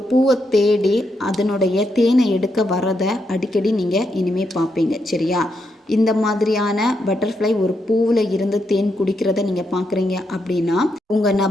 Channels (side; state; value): both; normal; correlation 0.81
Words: பூவை தேடி அதனுடைய தேனை எடுக்க வரதை அடிக்கடி நீங்கள் இனிமேல் பார்ப்பீங்க. சரியா? இந்த மாதிரியான பட்டர்ஃப்ளை ஒரு பூவில் இருந்து தேன் குடிக்கிறத நீங்கள் பார்க்குறீங்க அப்படின்னா உங்கள்